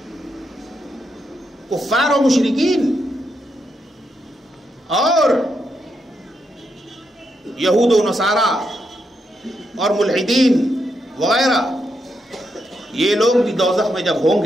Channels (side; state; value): both; normal; correlation 0.81